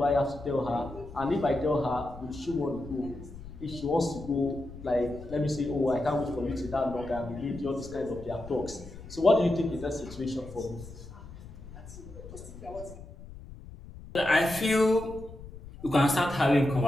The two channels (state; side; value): noise; left; rumble, 15 dB below the sound